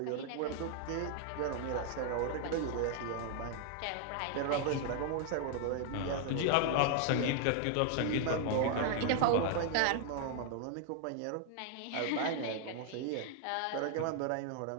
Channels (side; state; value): both; different; correlation 0.00